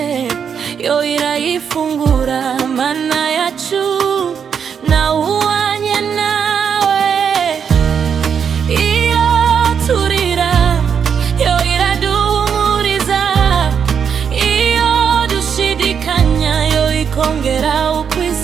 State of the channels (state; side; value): quieter; left; 7.2 dB